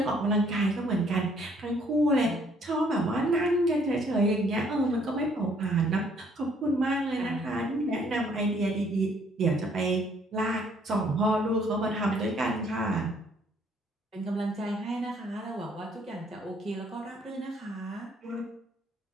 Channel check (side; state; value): both; normal; correlation 0.64